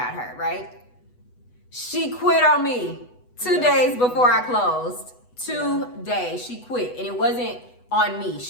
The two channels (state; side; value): late; right; 8.1 ms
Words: her, right? She quit on me 2 days before I closed. 2 days. She quit. And it wasn't on me.